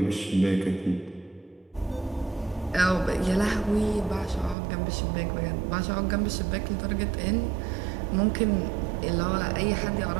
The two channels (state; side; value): drops out; left; at 4.5 s